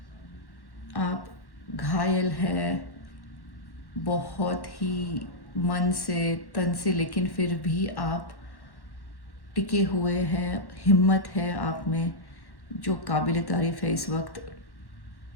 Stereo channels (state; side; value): late; right; 1.1 ms